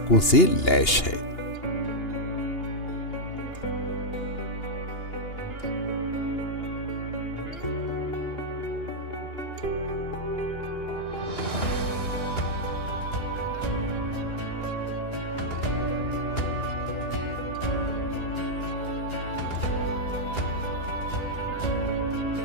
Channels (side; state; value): right; late; 2.8 ms